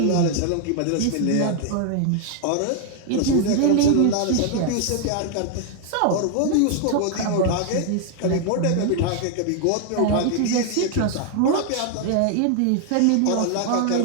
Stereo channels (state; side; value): different; both; correlation 0.00